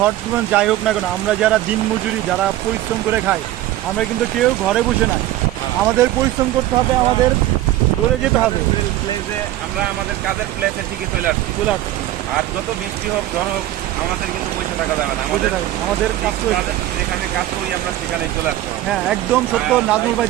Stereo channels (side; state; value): left; quieter; 14.4 dB